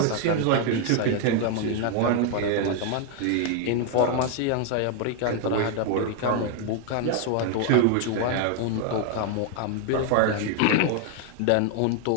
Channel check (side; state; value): both; different; correlation 0.00